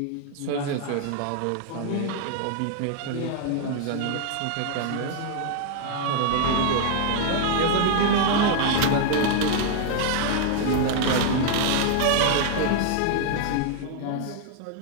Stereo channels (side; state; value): both; different; correlation 0.00